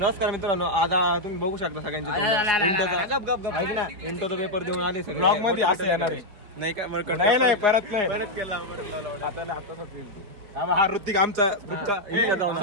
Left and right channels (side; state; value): left; late; 4.8 ms